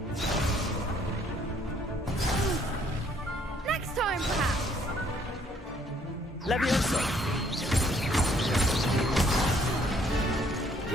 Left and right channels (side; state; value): both; normal; correlation 0.64